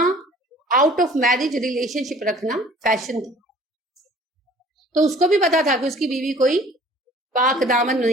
آؤٹ آف میرج ریلیشن شپ رکھنا فیشن تھا، تو اس کو بھی پتا تھا کہ اس کی بیوی کوئی پاک دامن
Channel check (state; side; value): normal; both; correlation 0.51